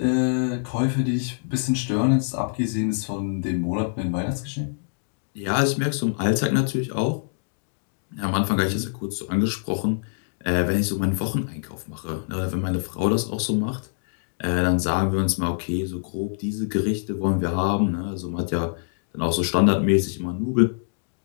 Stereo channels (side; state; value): right; silent; digital silence